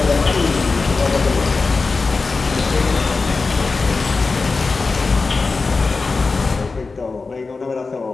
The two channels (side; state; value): right; quieter; 4.1 dB